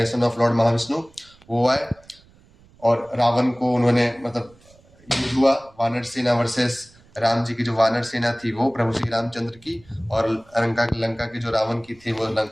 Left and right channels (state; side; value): noise; right; rumble, 28 dB below the sound